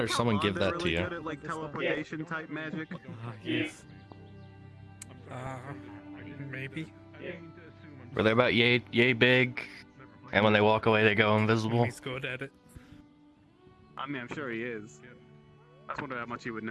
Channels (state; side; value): identical; both; correlation 1.00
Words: or someone give that to Really you? good at, like, teleportation type magic. Yes. Maybe. Were they about yay big? And when they walk away, they go invisible? He's good at it. I mean, I'm sure he is. I just wonder how much he would